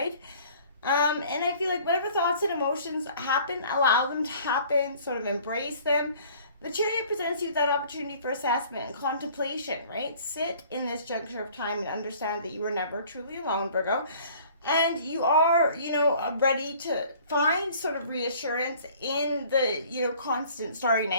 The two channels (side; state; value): both; inverted; correlation -0.52